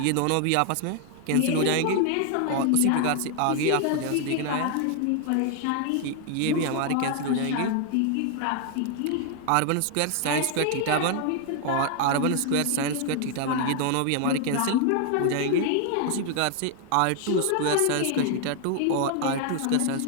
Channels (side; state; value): both; different; correlation 0.00